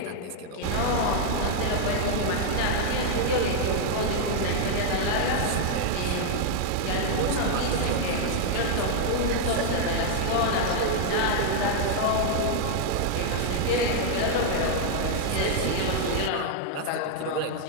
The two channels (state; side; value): different; both; correlation 0.00